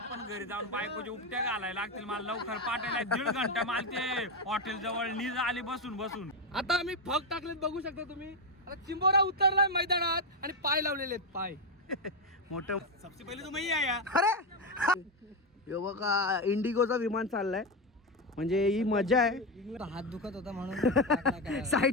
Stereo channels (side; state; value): both; normal; correlation 0.09